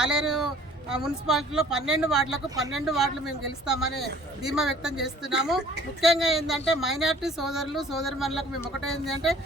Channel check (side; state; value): both; normal; correlation 0.52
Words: ఆలేరు మున్సిపాలిటీలో 12 వార్డులకు 12 వార్డులు మేము గెలుస్తామని ధీమా వ్యక్తం చేస్తున్నాము. ముఖ్యంగా ఏంటంటే మైనార్టీ సోదరులు సోదరిమణులకు మేము ఒకటే ఏంటంటే